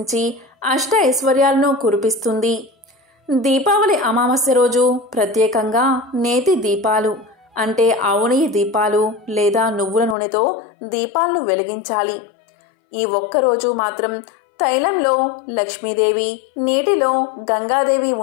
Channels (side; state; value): right; drops out; at 10.2 s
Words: అష్ట ఐశ్వర్యాలను కురిపిస్తుంది. దీపావళి అమావాస్య రోజు ప్రత్యేకంగా నేతి దీపాలు అంటే ఆవు నెయ్యి దీపాలు లేదా నువ్వుల నూనెతో దీపాలను వెలిగించాలి. ఈ ఒక్కరోజు మాత్రం తైలంలో లక్ష్మీదేవి, నీటిలో గంగాదేవి